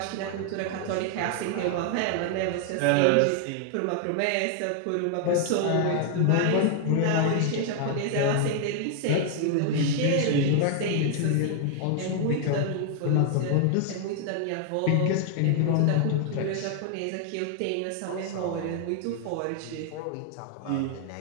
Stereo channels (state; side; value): different; both; correlation 0.00